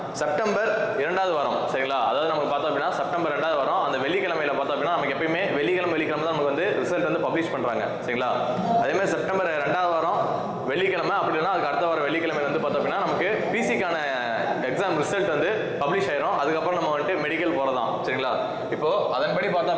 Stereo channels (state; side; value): identical; both; correlation 1.00